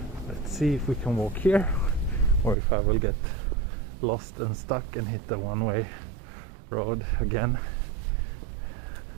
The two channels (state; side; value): drops out; left; at 2.6 s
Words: Let's see if we can walk here, or if I will get lost and stuck and hit the one-way road again.